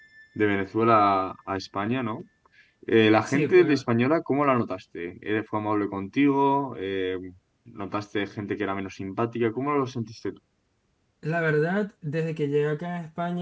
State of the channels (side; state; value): both; identical; correlation 1.00